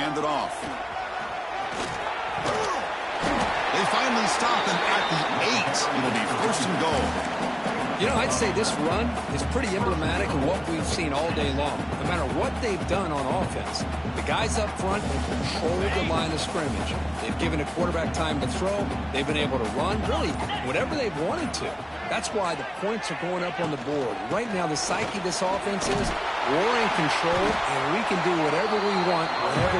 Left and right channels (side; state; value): both; identical; correlation 1.00